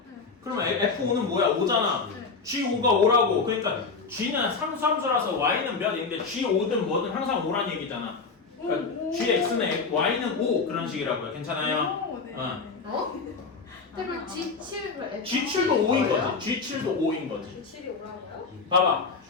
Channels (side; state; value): right; quieter; 4.6 dB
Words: 그러면 f5는 뭐야? 5잖아. g5가 5라고. 그러니까 g는 상수함수라서 y는 몇인데 g5든 뭐든 항상 5란 얘기잖아. 그러니까 gx는 y는 5 그런 식이라고요. 괜찮아요? 그럼 G7을 G7도 5인 거지. G7도 5인 거지. G7이 오라고요? 봐봐.